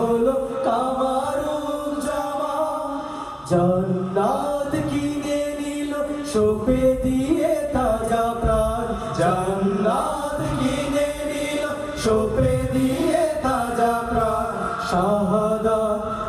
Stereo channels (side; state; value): both; identical; correlation 1.00